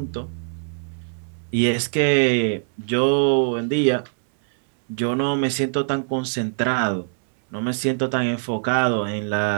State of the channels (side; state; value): left; silent; 64 dB below the other